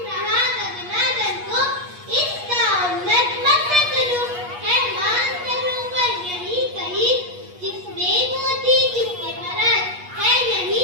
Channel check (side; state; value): left; late; 8.3 ms